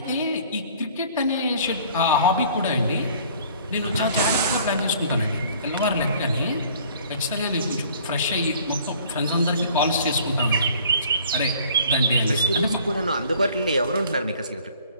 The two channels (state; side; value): inverted; both; correlation -0.53